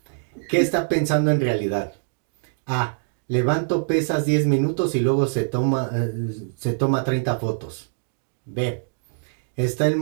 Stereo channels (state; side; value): silent; left; digital silence